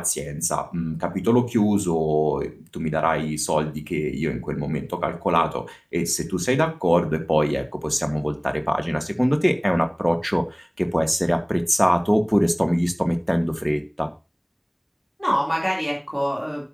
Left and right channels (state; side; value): identical; both; correlation 1.00